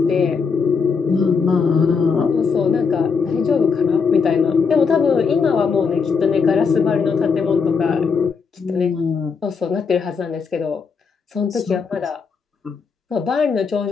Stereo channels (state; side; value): quieter; right; 5.5 dB